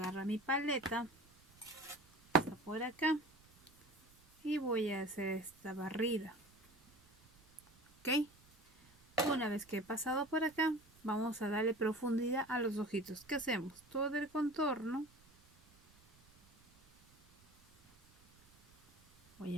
mi paleta, está por acá, y voy a hacer esta barrida. Ok, una vez que he pasado por acá, vamos a darle profundidad a los ojitos. ¿Qué hacemos? Todo el contorno. Voy a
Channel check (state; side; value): noise; right; rumble, 29 dB below the sound